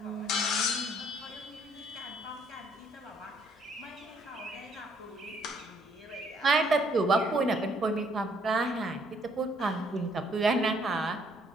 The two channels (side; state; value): both; normal; correlation 0.66